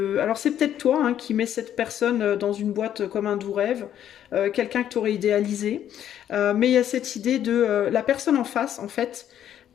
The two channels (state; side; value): quieter; right; 10.5 dB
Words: Alors c'est peut-être toi hein, qui mets cette personne dans une boîte comme un doux rêve, quelqu'un que tu aurais idéalisé, mais il y a cette idée de la personne en face, en fait,